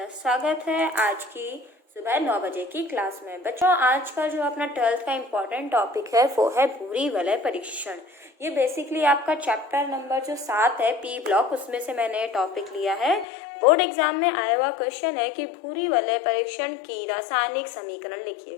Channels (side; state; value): right; drops out; at 13.2 s